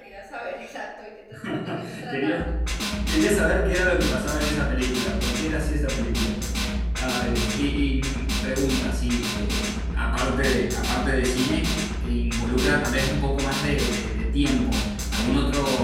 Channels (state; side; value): identical; both; correlation 1.00